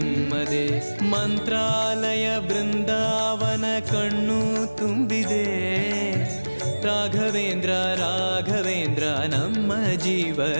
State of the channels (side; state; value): both; inverted; correlation -1.00